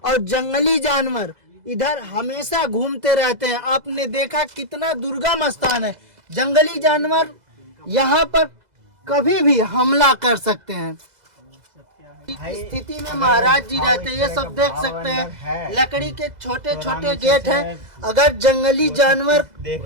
और जंगली जानवर इधर हमेशा घूमते रहते हैं। आपने देखा कितना दुर्गम स्थान है, जंगली जानवर यहाँ पर कभी भी हमला कर सकते हैं। इस स्थिति में महाराज जी रहते हैं। ये सब देख सकते हैं, लकड़ी के छोटे छोटे गेट हैं। अगर जंगली जानवर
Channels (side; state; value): left; late; 2.0 ms